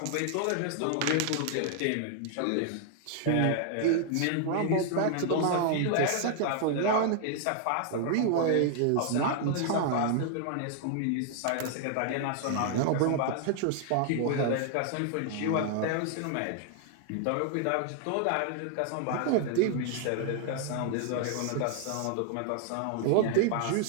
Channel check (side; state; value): both; different; correlation 0.00